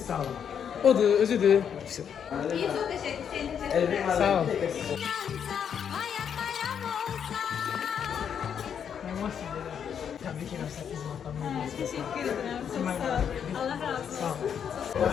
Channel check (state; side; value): quieter; right; 8.0 dB